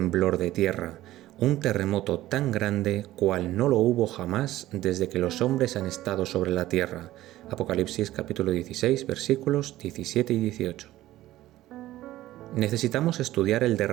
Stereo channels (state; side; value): quieter; left; 15.3 dB